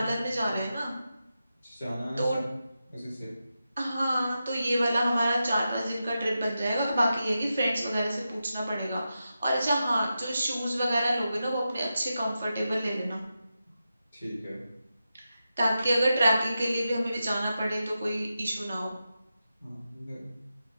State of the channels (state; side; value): inverted; both; correlation -0.90